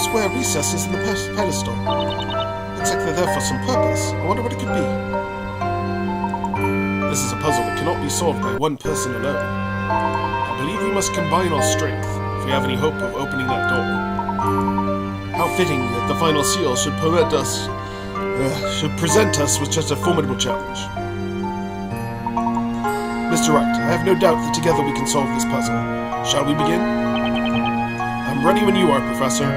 recesses in the pedestal. Looks like they're there for some purpose. I wonder what it could be. This is a puzzle that cannot be solved by one person alone. I believe we must combine our strength if we have any hope of opening that door. How fitting that the final seal should present us with such a formidable challenge. Mr. Wright, I have no doubt that together we can solve this puzzle. Shall we begin? I'm ready when you are, Professor.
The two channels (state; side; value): identical; both; correlation 1.00